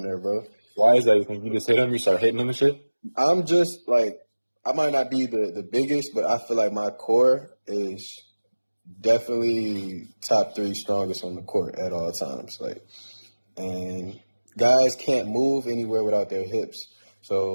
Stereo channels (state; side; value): inverted; both; correlation -1.00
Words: there, bro. Why is that? You think you just hit him? You start hitting him and shit? I'm just like I might not be the biggest, but I feel like my core is definitely top three strongest on the court at all times. Like, and guys can't move anywhere without their hips.